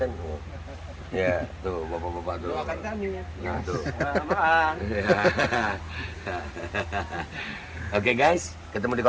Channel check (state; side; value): identical; both; correlation 1.00